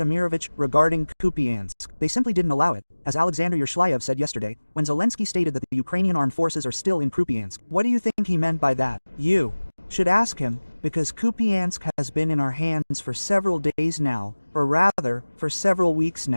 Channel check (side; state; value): both; inverted; correlation -1.00